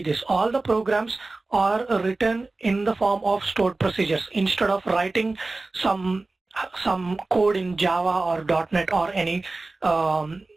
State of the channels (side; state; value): left; quieter; 3.3 dB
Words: this. All the programs are written in the form of stored procedures instead of writing some code in Java or .NET or any